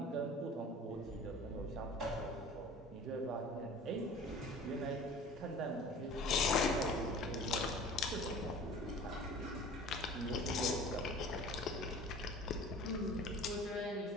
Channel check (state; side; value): normal; both; correlation 0.43